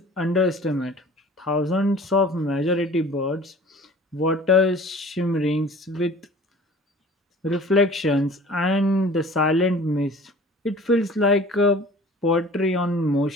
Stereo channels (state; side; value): normal; both; correlation 0.45